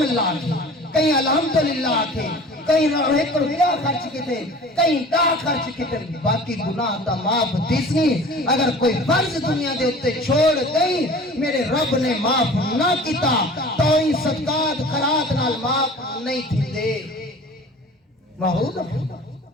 اللہ کی، کئی الحمدللہ کے، کئی ایک روپیہ خرچ کی تھے، کئی دا خرچ کی تھے، باقی گناہ تا معاف دیسنی، اگر کوئی فرض دنیا دے اتے چھوڑ گئی میرے رب نے معاف نہ کیتا تو ہی صدقات خیرات نال معاف نہیں تھی دے،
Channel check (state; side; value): normal; both; correlation 0.43